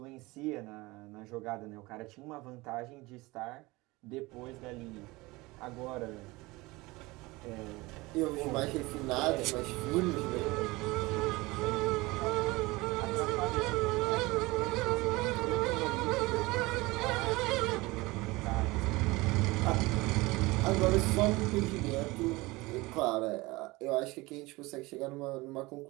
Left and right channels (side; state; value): left; quieter; 22.1 dB